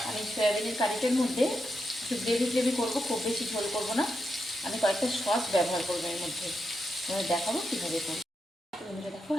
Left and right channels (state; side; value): normal; both; correlation 0.85